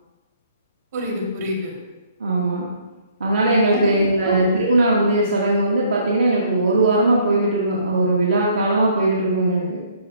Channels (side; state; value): both; inverted; correlation -0.62